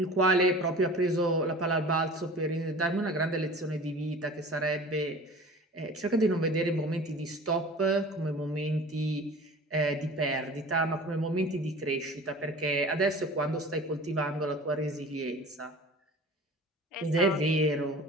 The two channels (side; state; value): both; normal; correlation 0.41